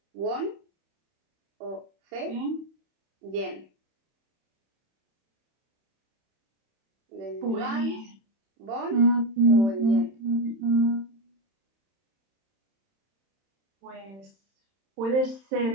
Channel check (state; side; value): late; left; 31 ms